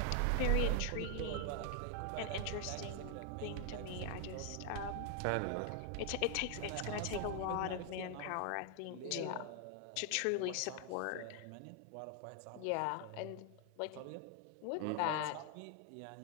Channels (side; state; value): both; different; correlation 0.00